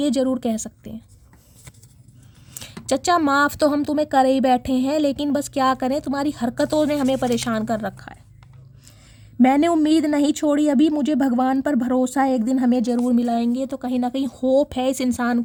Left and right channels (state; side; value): identical; both; correlation 1.00